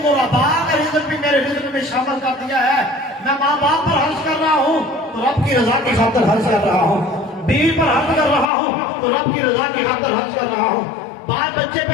غرباء کا رزق بھی میرے رزق میں شامل کر دیا ہے. میں ماں باپ پر خرچ کر رہا ہوں تو رب کی رضا کی خاطر خرچ کر رہا ہوں, بیوی پر خرچ کر رہا ہوں تو رب کی رضا کی خاطر خرچ کر رہا ہوں, بال بچے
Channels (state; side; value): drops out; right; at 8.5 s